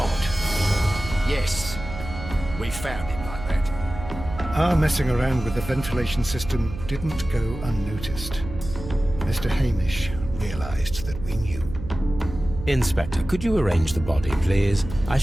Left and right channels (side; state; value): right; noise; hum, 10 dB below the sound